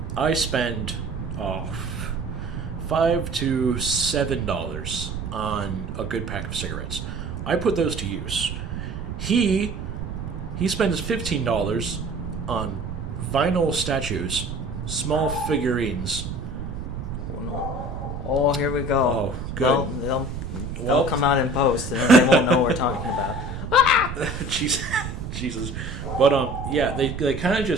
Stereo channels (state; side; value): noise; right; rumble, 6 dB below the sound